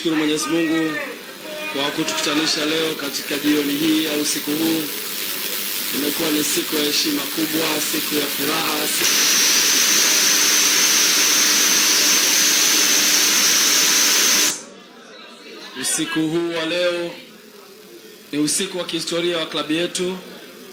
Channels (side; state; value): both; identical; correlation 1.00